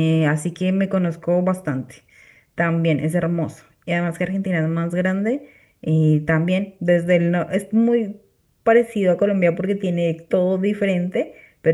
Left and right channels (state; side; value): identical; both; correlation 1.00